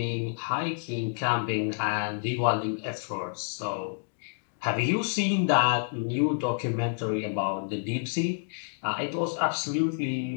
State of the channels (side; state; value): right; silent; digital silence